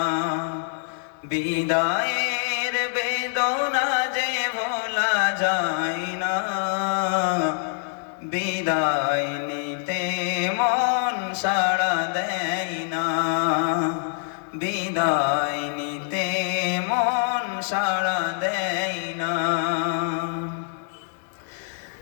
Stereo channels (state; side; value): silent; right; digital silence